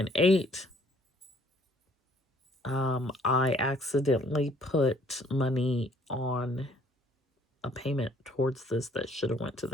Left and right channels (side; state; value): both; normal; correlation 0.61